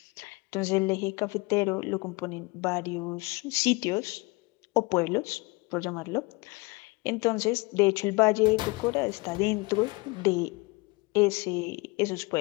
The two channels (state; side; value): quieter; right; 25.6 dB